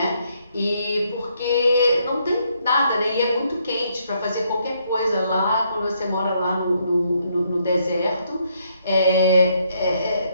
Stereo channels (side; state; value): both; inverted; correlation -0.73